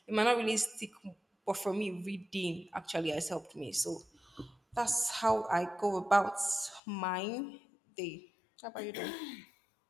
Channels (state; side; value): drops out; right; at 6.8 s